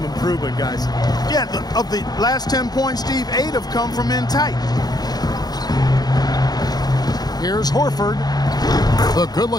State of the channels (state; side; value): late; right; 0.19 ms